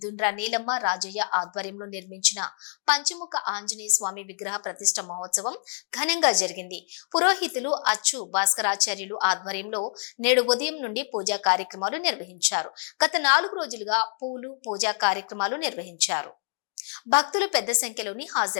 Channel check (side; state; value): right; silent; digital silence